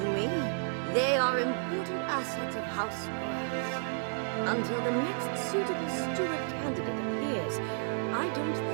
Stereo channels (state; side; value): silent; left; digital silence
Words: me, they are important assets of House Brass. Until the next suitable steward candidate appears, I don't